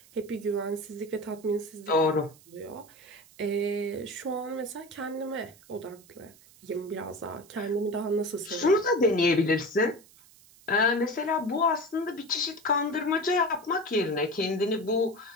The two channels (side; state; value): right; noise; hiss, 25 dB below the sound